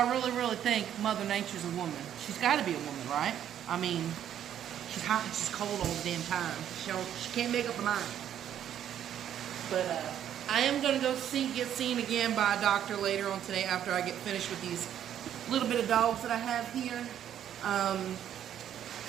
I really think Mother Nature's a woman. She's got to be a woman, right? I mean, she's hot and she's cold all the damn time. She can't make up her mind. But, I am going to go get seen again by a doctor later on today after I get finished with these little bit of dogs that I have here.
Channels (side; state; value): left; quieter; 10.2 dB